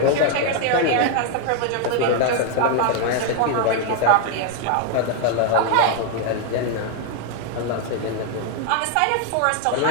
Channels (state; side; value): different; both; correlation 0.00